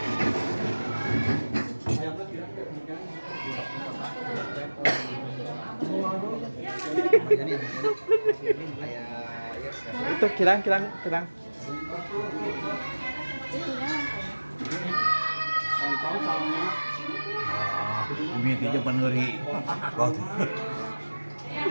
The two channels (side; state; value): both; inverted; correlation -1.00